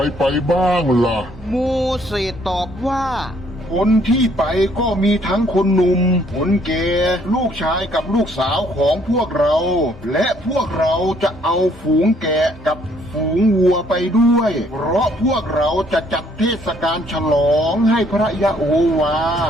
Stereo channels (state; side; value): normal; both; correlation 0.65